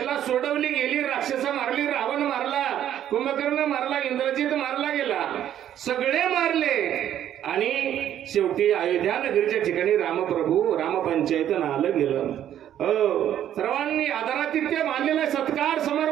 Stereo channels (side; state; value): left; quieter; 10.9 dB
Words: सोडवली गेली, राक्षस मारली, रावण मारला, कुंभकर्ण मारला, इंद्रजित मारला गेला, सगळे मारले, आणि शेवटी अयोध्या नगरीच्या ठिकाणी रामप्रभू रामपंचायत आलं गेलं. सर्वांनी आदरातिथ्य मानलेला सत्कार